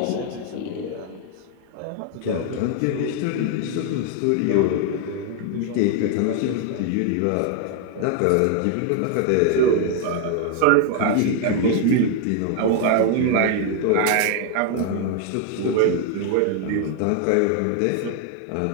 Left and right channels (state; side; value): different; both; correlation 0.00